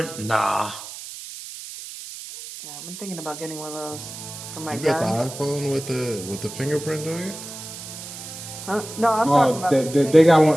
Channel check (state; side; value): noise; right; hiss, 12 dB below the sound